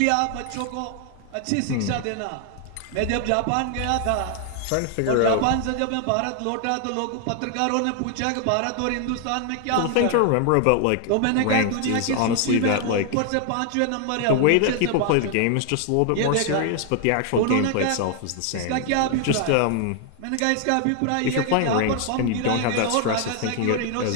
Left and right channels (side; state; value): both; different; correlation 0.00